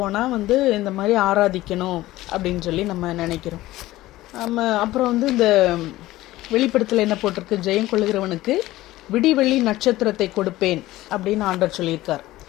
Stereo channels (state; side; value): quieter; right; 16.7 dB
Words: வந்து இந்த மாதிரி ஆராதிக்கணும் அப்படின்னு சொல்லி நம்ம நினைக்கிறோம். நம்ம அப்புறம் வந்து இந்த வெளிப்படுத்தல என்ன போட்டிருக்கு, ஜெயம் கொள்ளுகிறவனுக்கு விடிவெள்ளி நட்சத்திரத்தை கொடுப்பேன் அப்படின்னு ஆண்டவர் சொல்லியிருக்கார்.